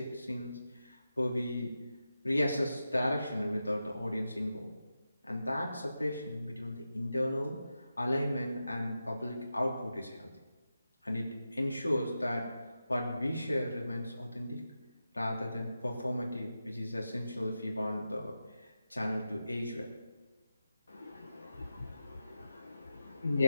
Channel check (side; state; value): both; inverted; correlation -0.91